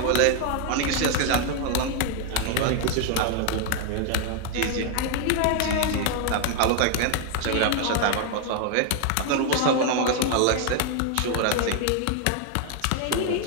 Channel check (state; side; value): different; both; correlation 0.00